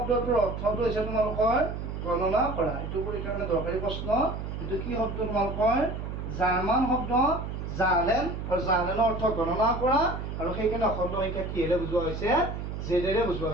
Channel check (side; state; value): right; noise; hum, 6 dB below the sound